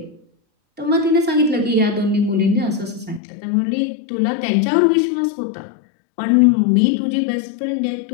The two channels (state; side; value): drops out; right; at 3.2 s